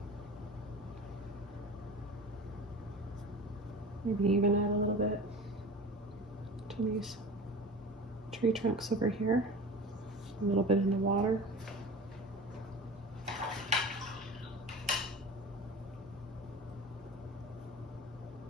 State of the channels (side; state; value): both; normal; correlation 0.35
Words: Maybe even add a little bit to these tree trunks over here. A little bit in the water.